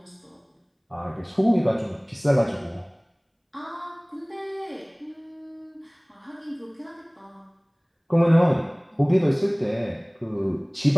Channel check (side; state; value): both; identical; correlation 1.00